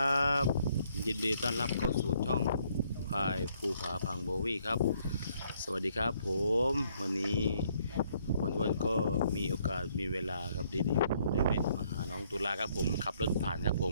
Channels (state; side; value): inverted; both; correlation -0.68